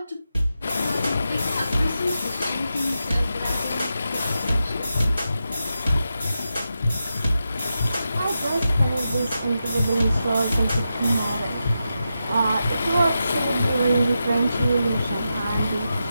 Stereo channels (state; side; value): inverted; both; correlation -0.88